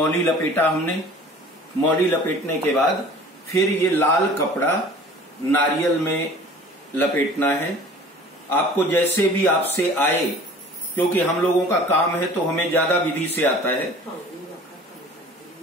लपेटा हमने। मौली लपेटने के बाद फिर ये लाल कपड़ा नारियल में लपेटना है। आपको जैसे भी आपसे आए, क्योंकि हम लोगों का काम है तो हमें ज्यादा विधि से आता है।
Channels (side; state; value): both; normal; correlation 0.46